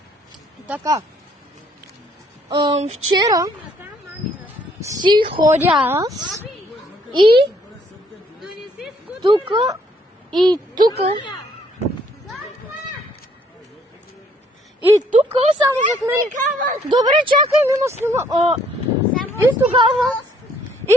Така. Вчера си ходя аз и тука и тука. И тук само зад мен. Добре, чакай, има снима. И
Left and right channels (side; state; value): both; normal; correlation 0.65